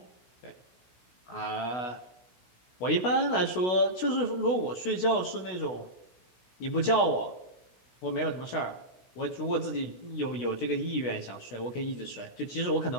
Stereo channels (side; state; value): right; late; 16 ms